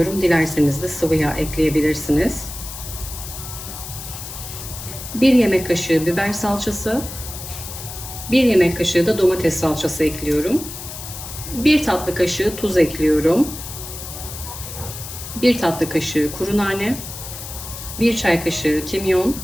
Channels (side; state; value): left; noise; hiss, 10 dB below the sound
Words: Dilerseniz de sıvı yağ ekleyebilirsiniz. 1 yemek kaşığı biber salçası. 1 yemek kaşığı da domates salçası ekliyorum. 1 tatlı kaşığı tuz ekliyorum. 1 tatlı kaşığı kuru nane. 1 çay kaşığı kimyon.